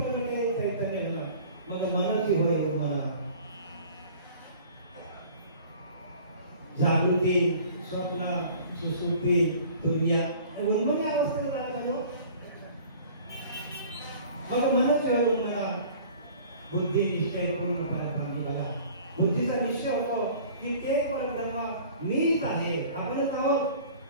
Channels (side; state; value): both; inverted; correlation -0.47